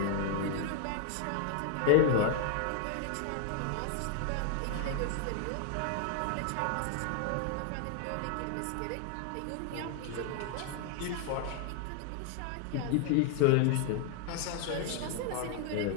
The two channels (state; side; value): different; both; correlation 0.00